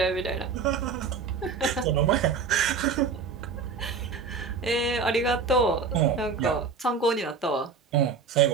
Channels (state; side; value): quieter; left; 5.2 dB